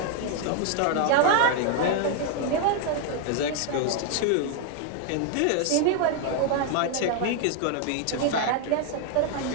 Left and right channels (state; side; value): different; both; correlation 0.00